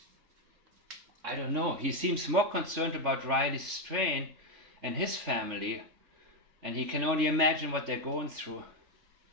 I don't know. He seems more concerned about Riley Strain and his family, and he can only imagine what they're going through.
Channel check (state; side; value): late; left; 3.4 ms